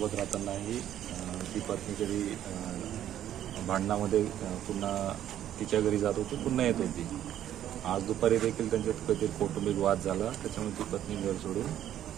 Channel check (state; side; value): quieter; left; 11.3 dB